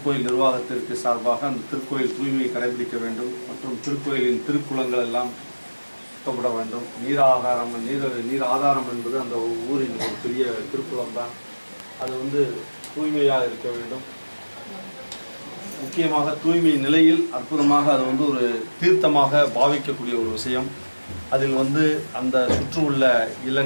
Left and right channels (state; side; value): inverted; both; correlation -1.00